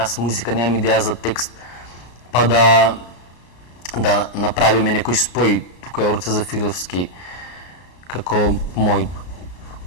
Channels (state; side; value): late; right; 34 ms